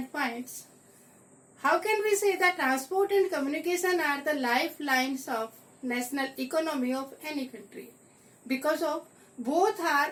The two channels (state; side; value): identical; both; correlation 1.00